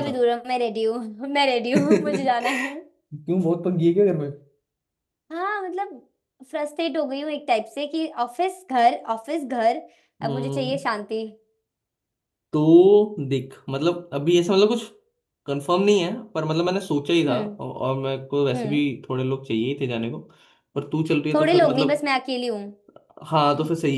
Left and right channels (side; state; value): both; identical; correlation 1.00